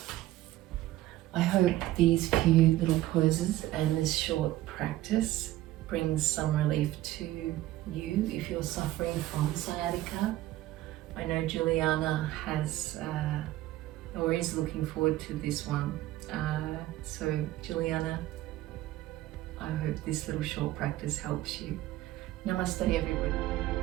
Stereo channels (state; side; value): quieter; left; 15.6 dB